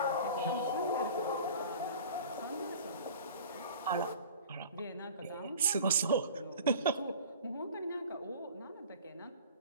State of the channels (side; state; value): both; inverted; correlation -0.43